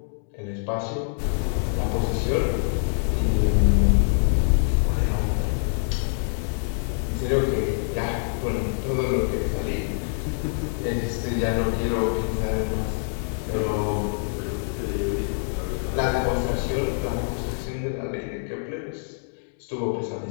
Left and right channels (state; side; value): silent; right; digital silence